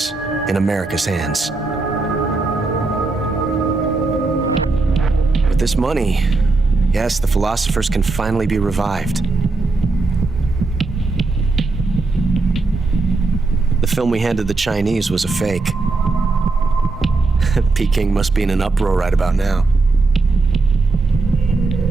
in America's hands. With this money, yes, the philosophers can finally be revived. The film we handed the Chinese was a fake. Peking must be in an uproar right about now.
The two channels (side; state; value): left; quieter; 3.6 dB